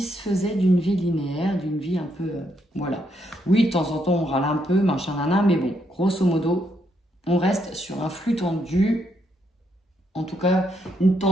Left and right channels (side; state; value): both; normal; correlation 0.77